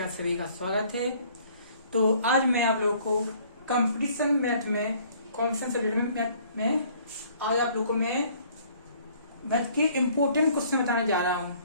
आप सभी का स्वागत है। तो आज मैं आप लोगों को कंपटीशन मैथ में कॉम्पिटिशन सब्जेक्ट में आज आप लोगों को मैं मैथ के इम्पोर्टेंट क्वेश्चन बताने जा रहा हूँ,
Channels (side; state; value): both; inverted; correlation -0.58